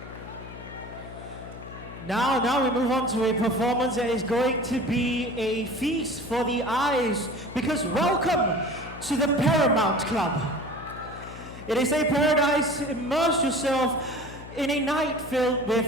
Now we move on to a performance that is going to be a feast for the eyes, because welcome to the Paramount Club. It is a paradise. Immerse yourself in a night filled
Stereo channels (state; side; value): noise; left; hum, 14 dB below the sound